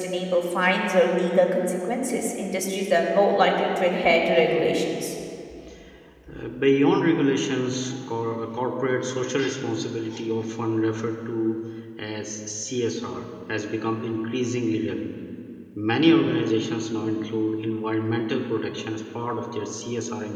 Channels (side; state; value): both; identical; correlation 1.00